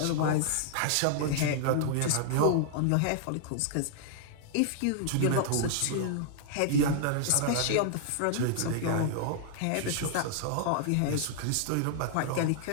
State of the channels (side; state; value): both; different; correlation -0.01